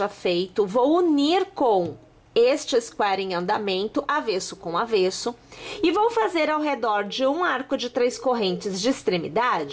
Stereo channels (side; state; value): both; identical; correlation 1.00